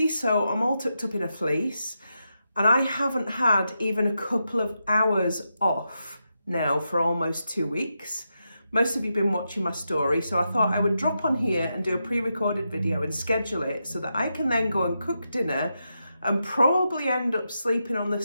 so I'm all tucked up in a fleece. And I haven't had even a couple of hours off now for almost 2 weeks. Most of you have been watching my story, so I thought I would drop on here and do a pre-recorded video and schedule it so that I can then go and cook dinner and probably end up sleeping on the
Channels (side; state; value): both; inverted; correlation -0.86